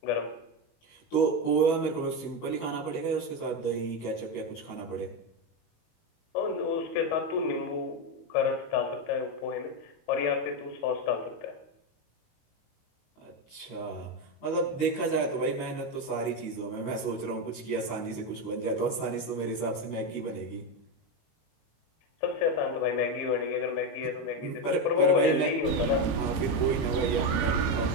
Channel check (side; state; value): right; late; 18 ms